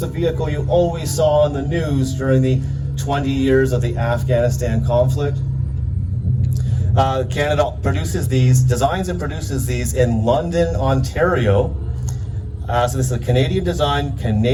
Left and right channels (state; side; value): identical; both; correlation 1.00